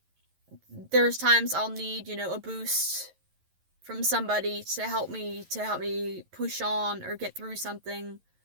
there's times I'll need, a boost from somebody to help me push on or get through something,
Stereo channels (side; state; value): left; late; 11 ms